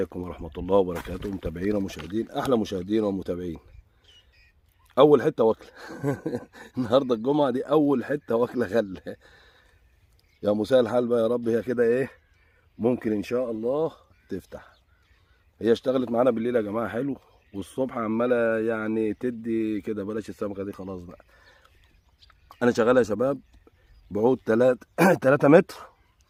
ورحمة الله وبركاته، متابعينا ومشاهدين، احلى مشاهدين ومتابعين. اول حتة واكلة النهارده الجمعة دي، اول حتة واكلة غلة. يا مساء الحال بقى يا رب، هي كده ايه ممكن ان شاء الله تفتح. هي اشتغلت معانا بالليل يا جماعة حلو، والصبح عمالة يعني تدي كده. بلاش السمكة دي خلاص بقى. انا شغال يا شباب بعود 3 متر،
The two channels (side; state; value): both; identical; correlation 1.00